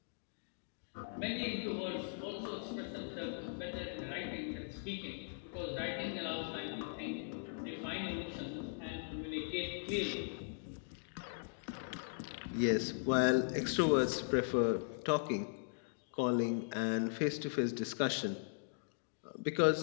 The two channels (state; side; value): silent; right; digital silence